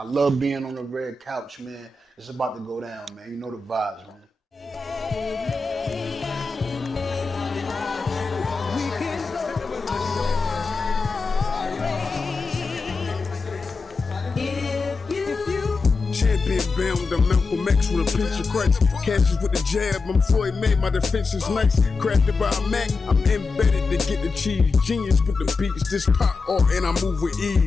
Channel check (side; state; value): right; quieter; 4.0 dB